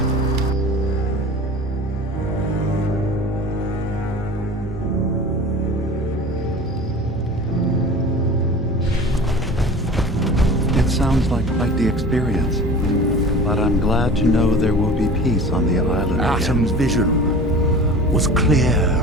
It sounds like quite the experience, but I'm glad to know there will be peace on the island again. Atom's vision was clear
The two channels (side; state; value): both; normal; correlation 0.39